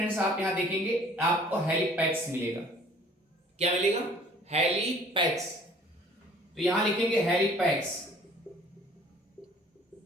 आप यहां देखेंगे आपको हेलिपैक्स मिलेगा। क्या मिलेगा? हेलिपैक्स। तो यहां लिखेंगे हेलिपैक्स।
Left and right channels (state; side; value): normal; both; correlation 0.53